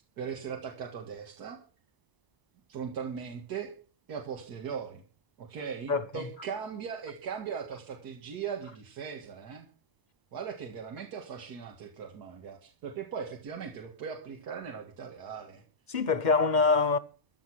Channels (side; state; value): left; late; 1.0 ms